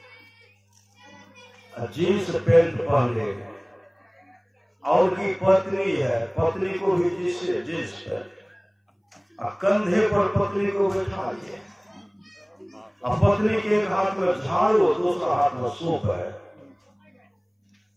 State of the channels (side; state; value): both; identical; correlation 1.00